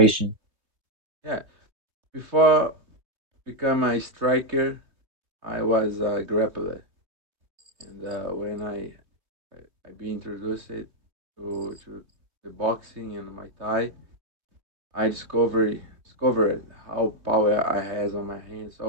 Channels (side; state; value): left; late; 3.2 ms